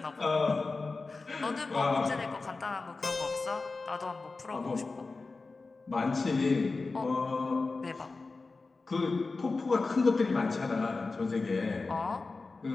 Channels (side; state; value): right; quieter; 3.8 dB